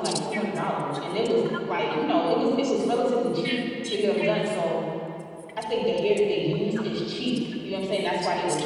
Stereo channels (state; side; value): identical; both; correlation 1.00